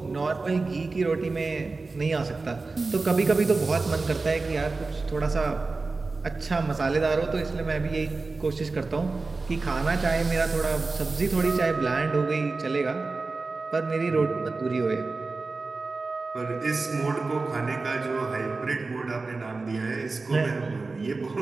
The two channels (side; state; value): left; quieter; 3.8 dB